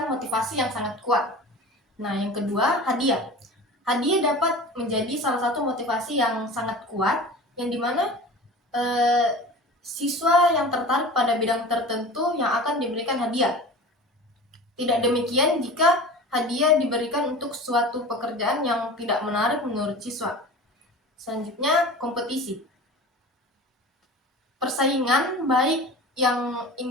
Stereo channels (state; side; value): normal; both; correlation 0.36